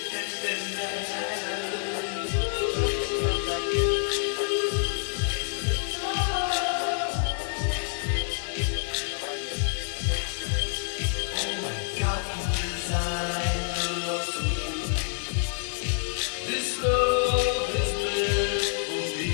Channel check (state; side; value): silent; right; 60 dB below the other